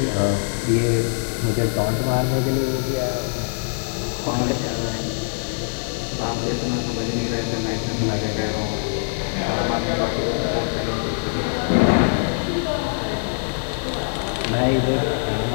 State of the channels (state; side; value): silent; right; digital silence